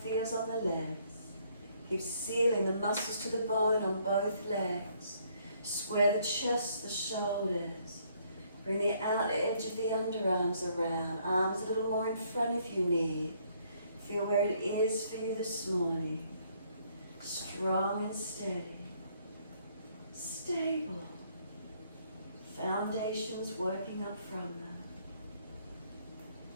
feels on the legs. Keep sealing the muscles to the bone on both legs. Square the chest, the shoulders. Bring the outer edge of the underarms around. Arms a little more in front if you need. Feel where it is for you this morning. Strong and steady. Stable. Foundations working up from them.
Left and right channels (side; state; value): both; inverted; correlation -0.67